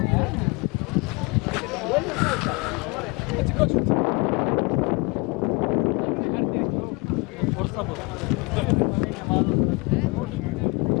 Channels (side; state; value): right; quieter; 28.0 dB